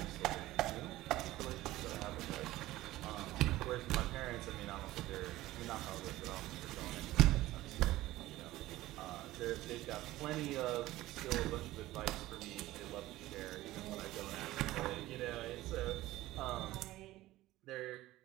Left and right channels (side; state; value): left; quieter; 16.7 dB